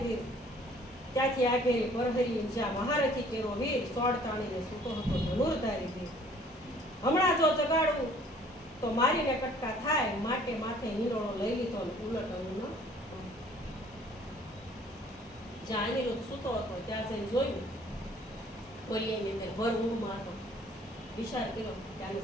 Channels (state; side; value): normal; both; correlation 0.56